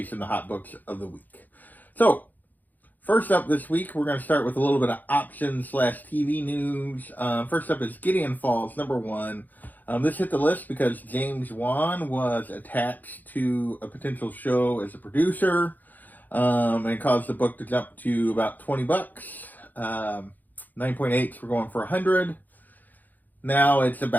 the hot books of the week. So, first up this week, we're going to start with a little bit of option/TV news. First up is Gideon Falls, number 1. This hit the list because James Wan was attached to a potential show as a producer, and it caused the book to jump to about $20. 9.8s were going for $100. Now it's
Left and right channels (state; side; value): late; right; 0.084 ms